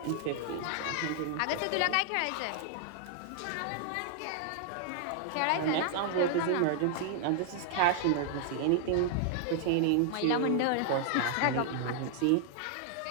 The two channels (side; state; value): both; different; correlation 0.00